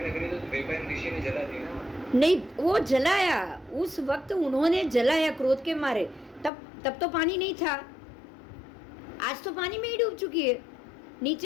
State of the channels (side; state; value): right; drops out; at 6.5 s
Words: तो द्वैपायन ऋषि ने जला दी ना? नहीं, वो जलाया, उस वक्त उन्होंने जलाया क्रोध के मारे, तब तो पानी नहीं था। आज तो पानी में ही डूब चुकी है,